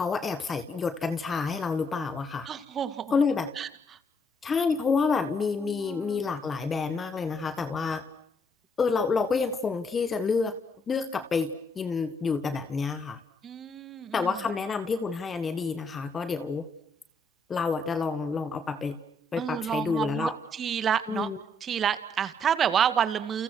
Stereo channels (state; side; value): normal; both; correlation 0.72